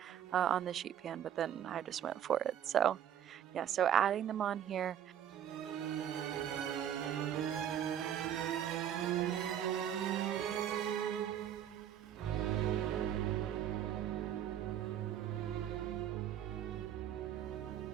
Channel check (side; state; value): left; quieter; 10.1 dB